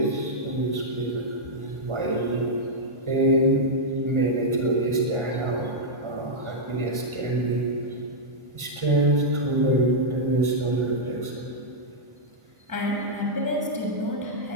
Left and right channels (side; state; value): left; late; 1.4 ms